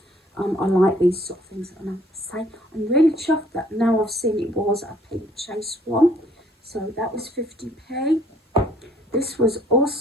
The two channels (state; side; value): normal; both; correlation 0.61